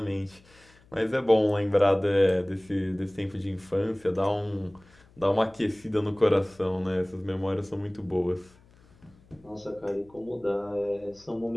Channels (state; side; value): noise; left; hum, 28 dB below the sound